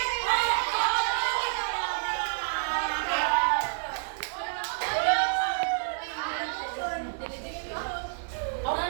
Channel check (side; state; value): left; silent; 55 dB below the other